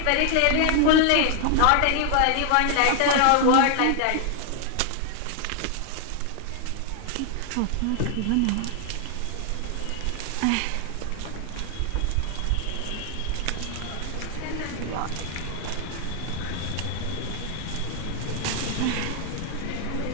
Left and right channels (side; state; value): both; different; correlation 0.00